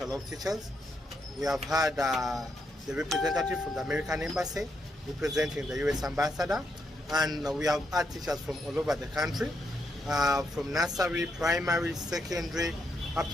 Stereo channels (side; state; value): both; normal; correlation 0.80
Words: teachers. We have had the representative from the American Embassy representing the US Ambassador. And we have had teachers from all over the country, from nursery, primary, secondary, up